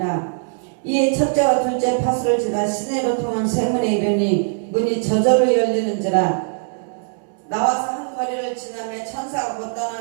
이에 첫째와 둘째 파수를 지나 시내로 통한 쇠문에 이르니 문이 저절로 열리는지라. 나와서 한 거리를 지나며 천사가 곧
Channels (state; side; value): silent; left; digital silence